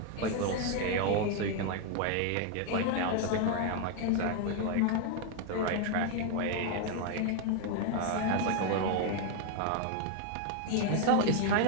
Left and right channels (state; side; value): different; both; correlation 0.01